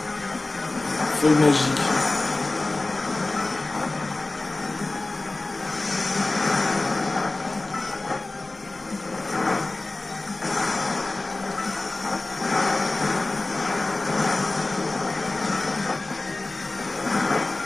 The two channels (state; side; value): quieter; right; 3.1 dB